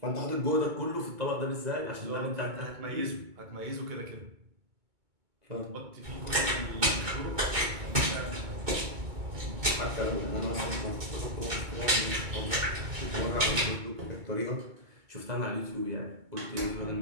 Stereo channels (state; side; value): late; left; 2.2 ms